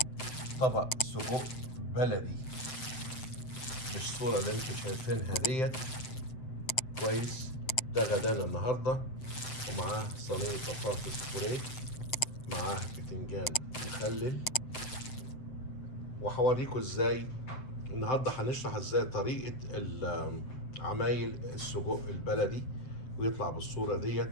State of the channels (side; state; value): right; late; 7.8 ms